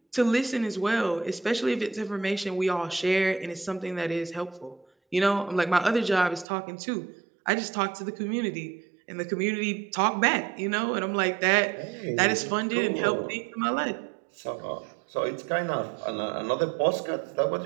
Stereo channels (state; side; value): drops out; left; at 6.5 s